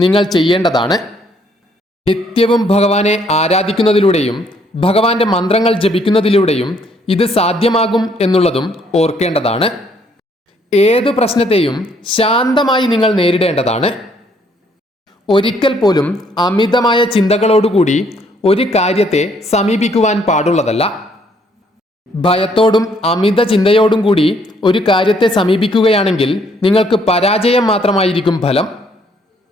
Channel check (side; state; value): both; normal; correlation 0.67